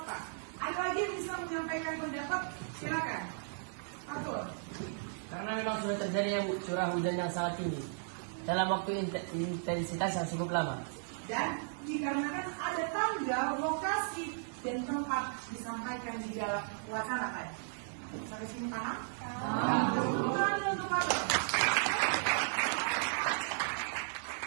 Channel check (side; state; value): left; silent; digital silence